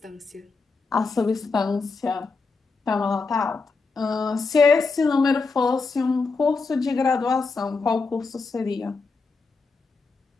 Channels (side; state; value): right; quieter; 4.3 dB